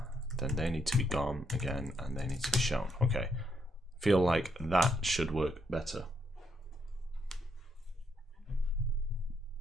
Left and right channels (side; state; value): both; normal; correlation 0.75